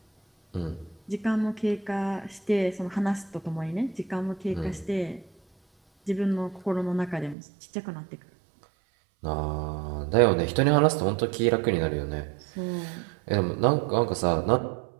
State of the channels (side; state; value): left; drops out; at 7.4 s